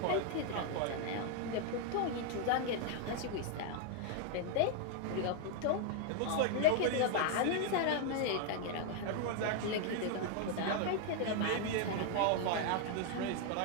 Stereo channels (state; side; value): different; both; correlation 0.00